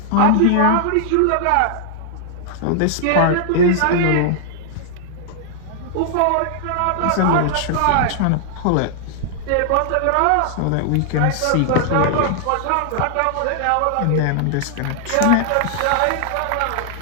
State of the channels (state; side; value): different; both; correlation -0.01